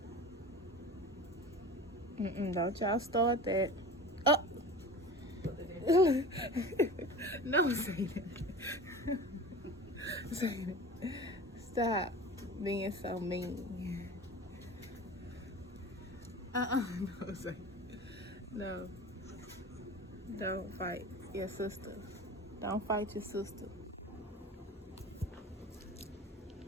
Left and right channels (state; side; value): normal; both; correlation 0.35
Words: Don't y'all start that. Oh. No, say that. Say that. Stop being so mean. No, say no. Don't fight your sister. Don't fight your sister.